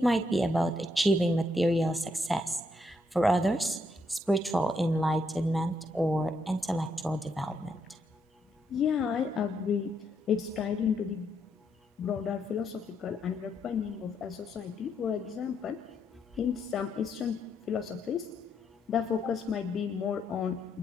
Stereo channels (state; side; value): normal; both; correlation 0.77